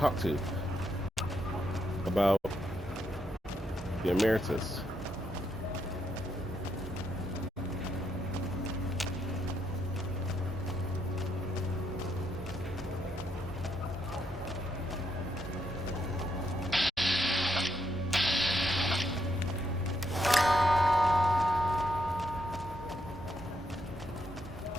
to about the Emeritus.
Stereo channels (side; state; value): both; normal; correlation 0.77